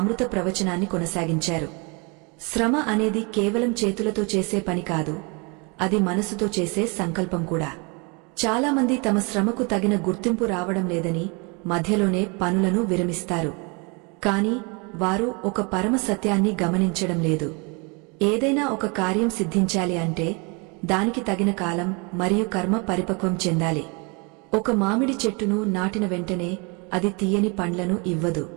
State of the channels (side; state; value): left; quieter; 31.3 dB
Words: ప్రవచనాన్ని కొనసాగించారు. శ్రమ అనేది కేవలం చేతులతో చేసే పని కాదు, అది మనసుతో చేసే సంకల్పం కూడా. చాలామంది తమ శ్రమకు తగిన గుర్తింపు రావడం లేదని మధ్యలోనే పనులను విరమిస్తారు. కాని వారు ఒక పరమ సత్యాన్ని గమనించడం లేదు. ఏదైనా ఒక కార్యం సిద్ధించాలి అంటే దానికి తగిన కాలం మరియు కర్మ పరిపక్వం చెందాలి. ఒక మామిడి చెట్టును నాటిన వెంటనే అది తీయని పండ్లను ఇవ్వదు.